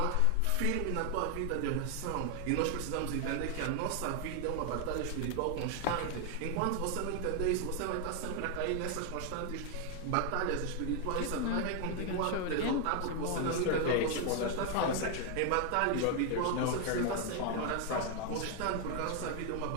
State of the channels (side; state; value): both; different; correlation 0.00